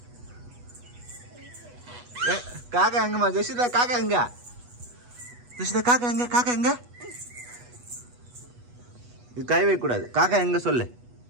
காக்கா எங்கம்மா ஜெசிதா? காக்கா எங்க ஜெசிதா? காக்கா எங்க? இது கை வைக்க கூடாது. காக்கா எங்க சொல்லு.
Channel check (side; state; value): left; late; 8.2 ms